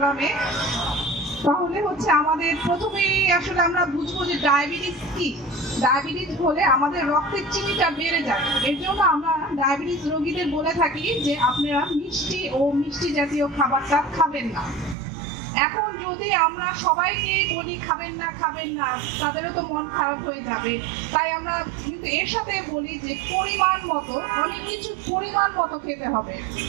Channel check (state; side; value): drops out; left; at 15.0 s